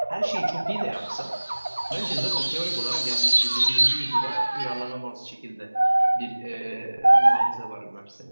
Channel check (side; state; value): both; inverted; correlation -1.00